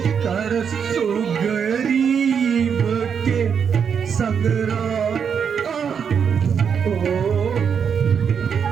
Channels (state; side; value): quieter; left; 7.0 dB